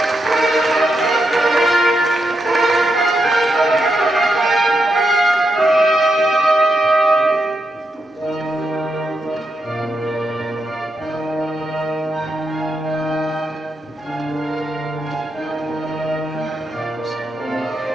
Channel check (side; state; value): both; normal; correlation 0.83